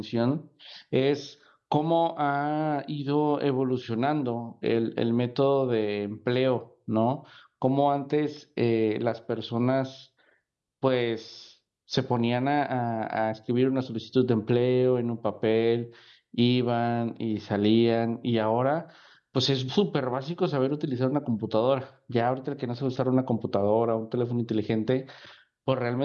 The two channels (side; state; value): both; identical; correlation 1.00